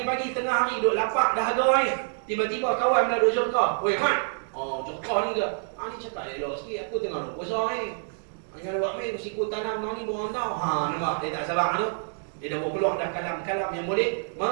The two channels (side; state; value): left; silent; digital silence